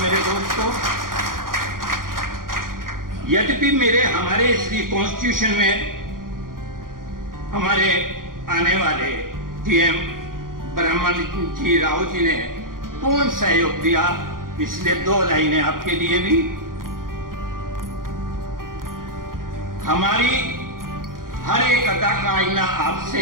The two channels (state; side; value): late; left; 0.90 ms